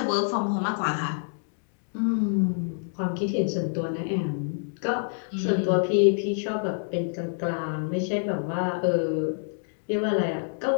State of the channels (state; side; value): silent; right; digital silence